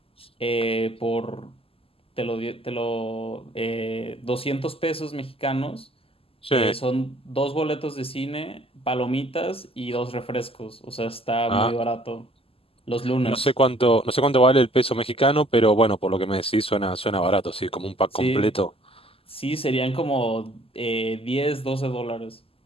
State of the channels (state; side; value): late; right; 0.27 ms